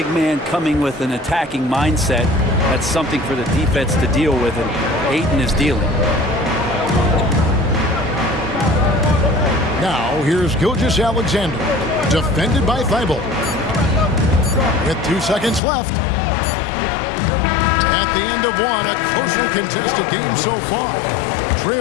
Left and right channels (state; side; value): drops out; right; at 15.6 s